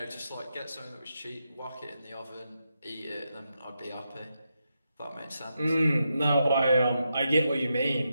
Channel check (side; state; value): both; inverted; correlation -0.85